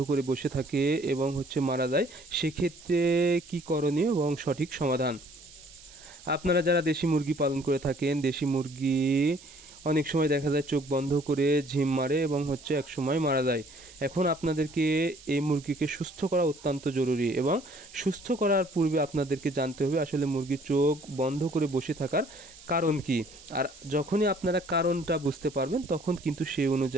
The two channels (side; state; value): right; noise; hiss, 21 dB below the sound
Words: করে বসে থাকে এবং মারা যায়, সেক্ষেত্রে কি করণীয় এবং সঠিক সমাধান। আপনারা যারা দেশি মুরগি পালন করে থাকেন, দেশি মুরগি অনেক সময় দেখা যায় চোখ বন্ধ করে ঝিম মারে এবং এক সময় মারা যায়। এখন আপনাদেরকে এই মুরগিকে সুস্থ করা অত্যন্ত জরুরি, এবং সুস্থ করার পূর্বে আপনাদেরকে জানতে হবে আসলে মুরগির চোখ বন্ধ করে বসে থাকার কারণ কি। আর যখনই আপনারা কারণটা বুঝতে পারবেন, তখন কিন্তু সেই